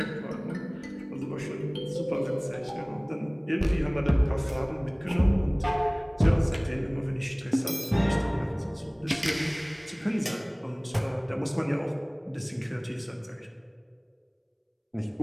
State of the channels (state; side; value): identical; both; correlation 1.00